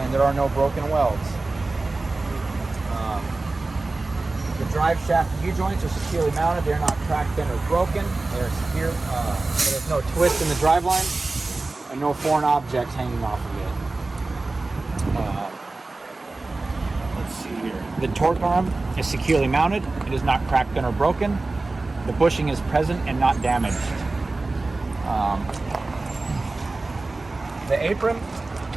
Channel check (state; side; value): quieter; left; 3.3 dB